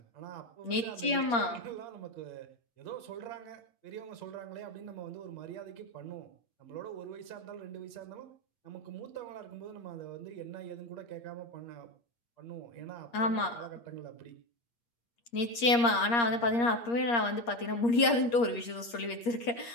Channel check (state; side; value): late; right; 8.5 ms